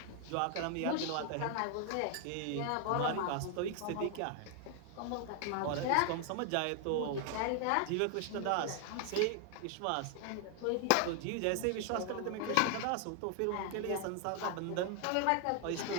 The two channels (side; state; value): both; different; correlation 0.00